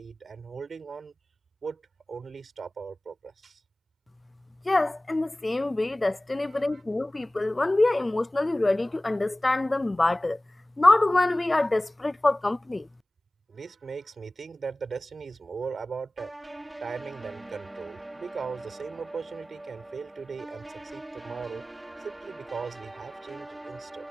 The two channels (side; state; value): both; normal; correlation 0.98